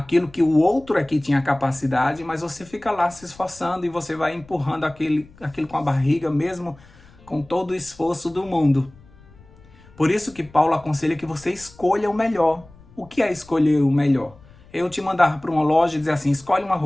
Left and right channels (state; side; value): noise; left; rumble, 24 dB below the sound